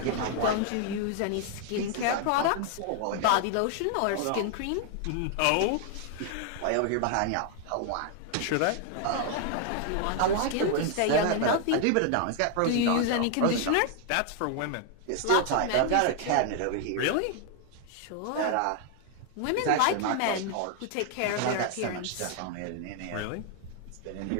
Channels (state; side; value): different; both; correlation 0.00